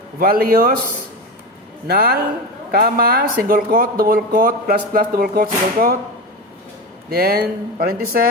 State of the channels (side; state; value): both; normal; correlation 0.21